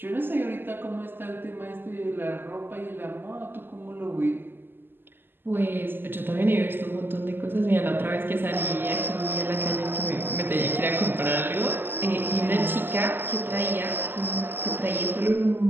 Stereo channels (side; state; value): left; late; 0.097 ms